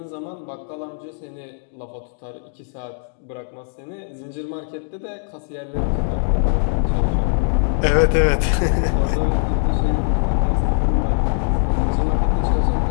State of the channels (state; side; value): silent; right; digital silence